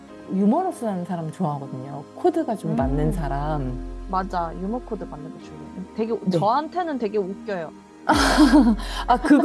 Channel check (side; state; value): both; identical; correlation 1.00